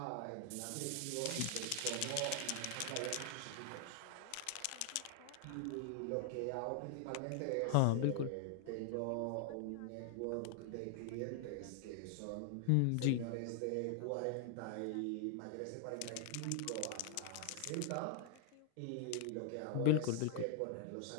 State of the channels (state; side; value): different; both; correlation 0.00